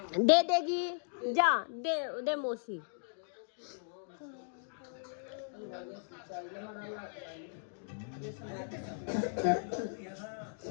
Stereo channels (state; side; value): silent; right; digital silence